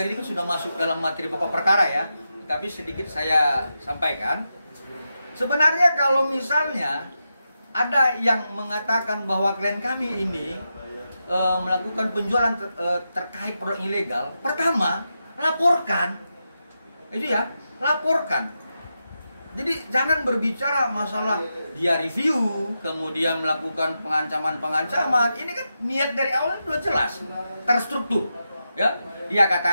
ini kan sudah masuk dalam materi pokok perkara ya, tapi sedikit saya sampaikan. Sebenarnya kalau misalnya ada yang mengatakan bahwa klien kami ini melakukan penjualan terkait produk ilegal, pertama laporkan, itu ya, laporkan. Jadi jangan berbicara masalah dia review, kemudian melakukan pengancaman. Ini kan niat dari awal sudah jelas, terstruktur. Ya, dia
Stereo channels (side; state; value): both; inverted; correlation -0.88